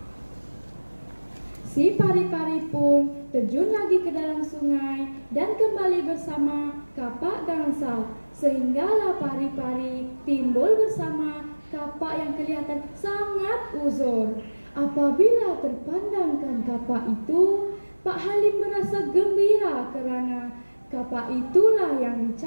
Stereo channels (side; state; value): both; inverted; correlation -1.00